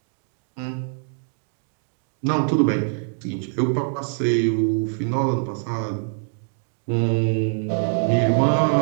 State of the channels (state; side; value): silent; left; digital silence